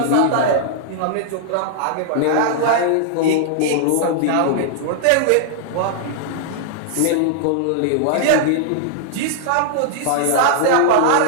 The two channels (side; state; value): both; different; correlation -0.01